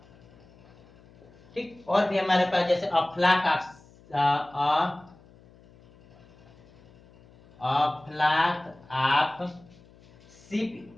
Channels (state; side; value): noise; left; hum, 26 dB below the sound